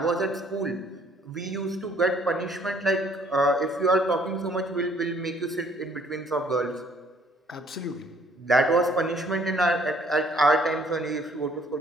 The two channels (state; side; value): normal; both; correlation 0.61